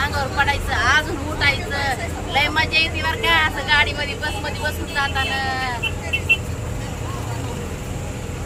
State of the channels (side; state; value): both; identical; correlation 1.00